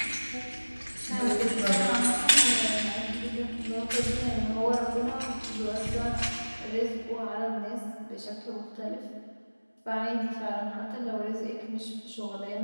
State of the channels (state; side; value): inverted; both; correlation -1.00